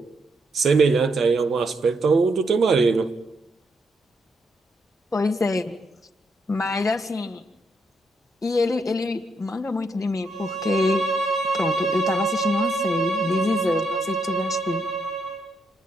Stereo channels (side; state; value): both; normal; correlation 0.78